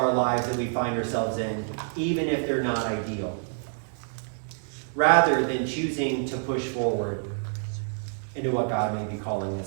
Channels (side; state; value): left; silent; 60 dB below the other